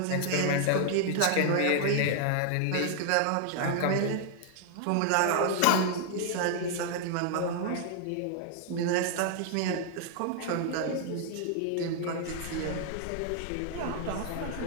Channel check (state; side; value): different; both; correlation 0.00